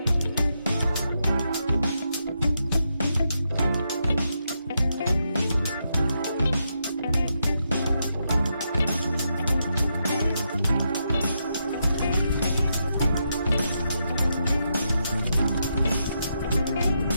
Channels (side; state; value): both; inverted; correlation -0.82